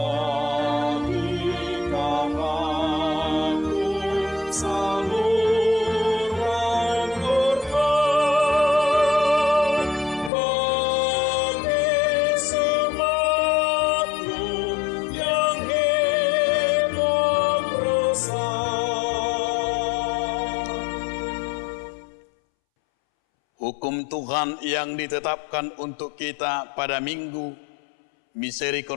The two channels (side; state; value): right; drops out; at 10.3 s